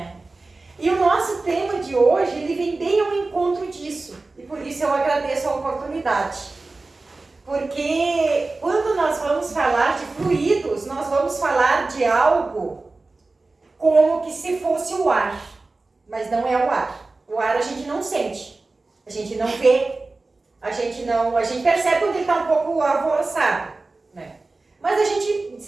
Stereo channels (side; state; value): left; quieter; 3.4 dB